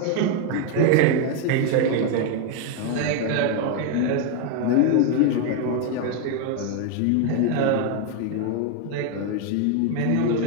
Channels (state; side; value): different; both; correlation 0.01